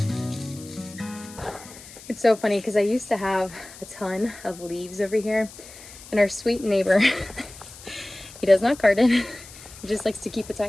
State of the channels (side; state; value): left; noise; hiss, 18 dB below the sound